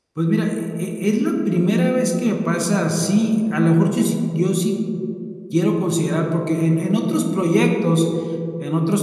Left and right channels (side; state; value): both; identical; correlation 1.00